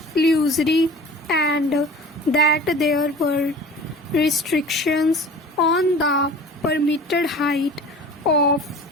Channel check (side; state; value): both; normal; correlation 0.42